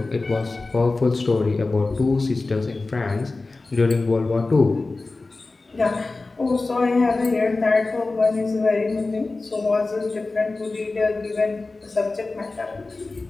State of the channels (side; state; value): right; quieter; 3.4 dB